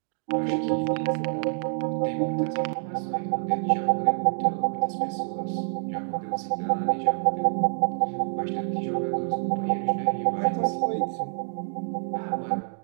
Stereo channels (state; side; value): silent; left; digital silence